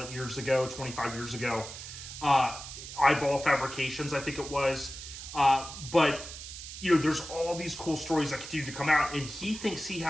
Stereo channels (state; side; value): noise; right; hiss, 11 dB below the sound